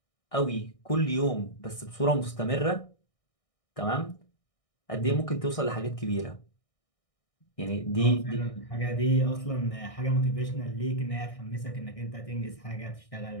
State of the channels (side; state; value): right; late; 1.6 ms